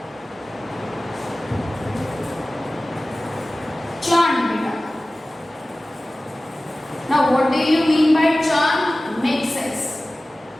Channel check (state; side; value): normal; both; correlation 0.97